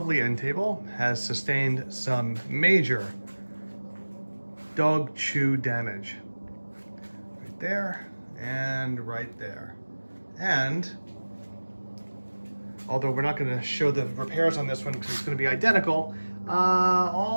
end table has sustained some major dog chew damage. Right there and right there. And although we're not going to show the repairs on this one because it's going to be identical,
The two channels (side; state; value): both; inverted; correlation -1.00